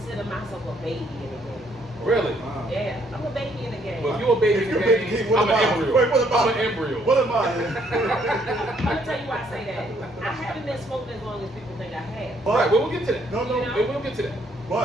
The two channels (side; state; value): both; normal; correlation 0.68